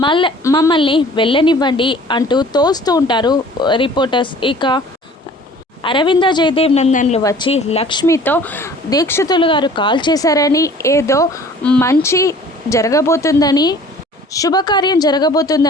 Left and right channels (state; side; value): normal; both; correlation 0.49